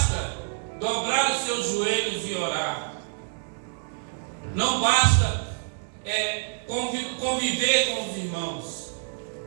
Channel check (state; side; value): silent; left; 60 dB below the other